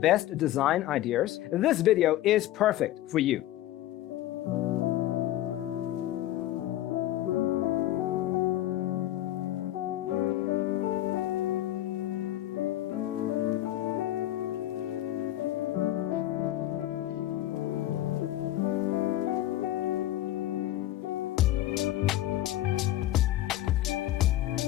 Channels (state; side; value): quieter; right; 14.2 dB